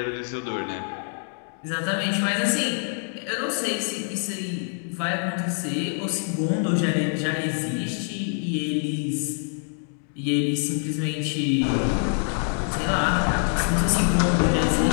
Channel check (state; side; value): silent; right; 56 dB below the other